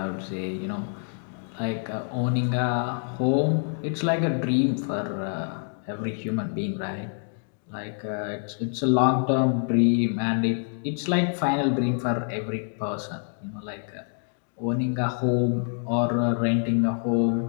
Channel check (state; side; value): silent; right; 61 dB below the other